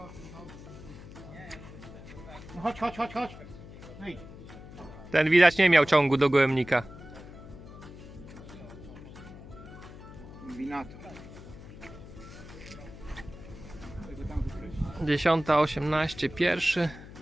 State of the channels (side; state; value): left; noise; hum, 15 dB below the sound